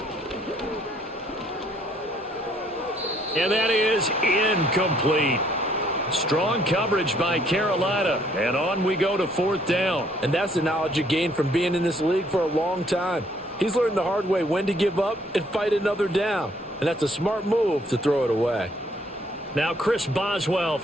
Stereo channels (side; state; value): both; normal; correlation 0.65